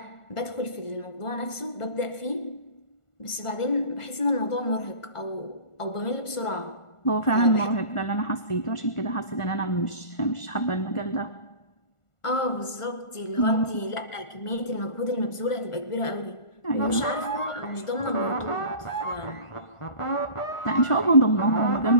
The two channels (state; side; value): late; right; 1.4 ms